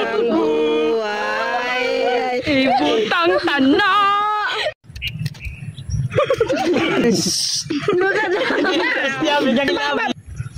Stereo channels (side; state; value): both; identical; correlation 1.00